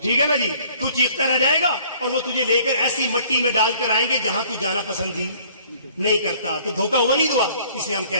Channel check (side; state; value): both; inverted; correlation -0.56